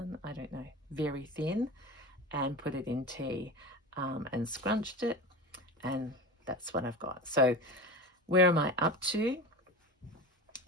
I don't know, very thin, and put it in tea and scrunched it, and that's what I've got. So where am I up to?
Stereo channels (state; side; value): normal; both; correlation 0.29